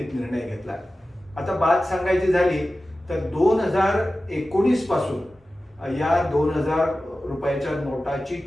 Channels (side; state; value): both; normal; correlation 0.95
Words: निर्णय घेतला. आता बात सांगायची झाली तर 2019 पासून या 2000 रुपयाच्या नोटाची